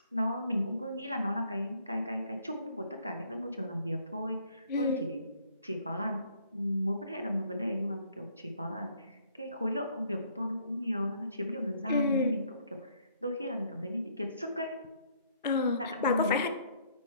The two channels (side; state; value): both; inverted; correlation -0.64